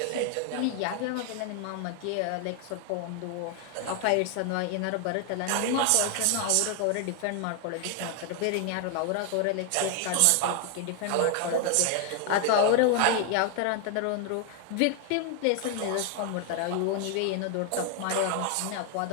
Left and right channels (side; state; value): both; different; correlation 0.00